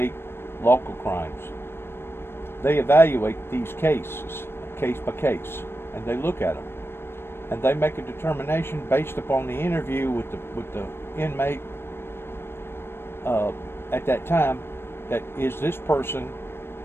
local crimes. They evaluate these cases, case by case, and they look at them. And they make a determination based upon the interview with the inmate at that time, that is this person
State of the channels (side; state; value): right; late; 0.12 ms